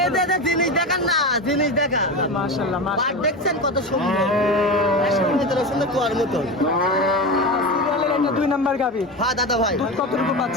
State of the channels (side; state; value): both; normal; correlation 0.23